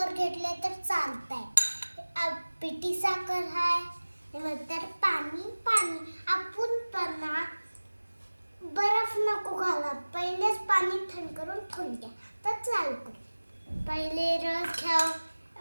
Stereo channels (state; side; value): inverted; both; correlation -1.00